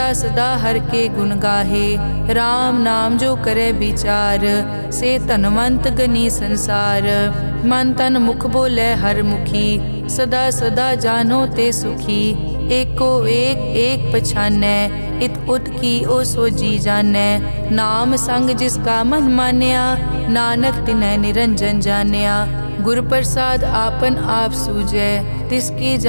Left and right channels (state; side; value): inverted; both; correlation -1.00